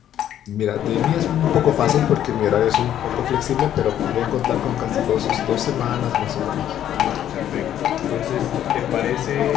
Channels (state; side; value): quieter; right; 10.9 dB